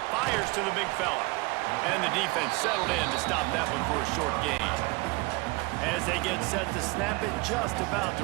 Fires to the big fella. And the defense settled in to stop that one for a short gain. As they get set to snap it, just about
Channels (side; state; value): left; quieter; 25.9 dB